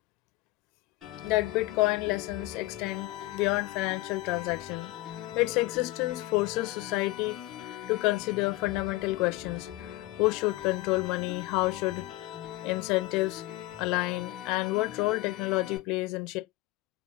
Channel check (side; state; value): right; quieter; 19.0 dB